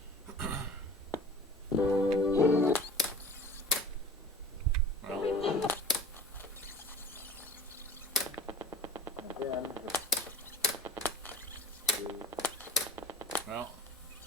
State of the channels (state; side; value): normal; both; correlation 0.39